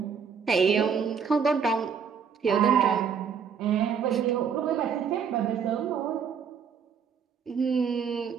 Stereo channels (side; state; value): left; quieter; 6.8 dB